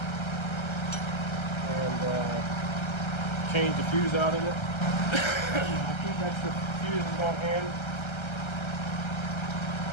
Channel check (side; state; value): right; late; 1.3 ms